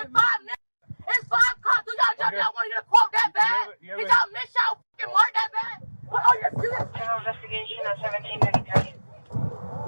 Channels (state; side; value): inverted; both; correlation -1.00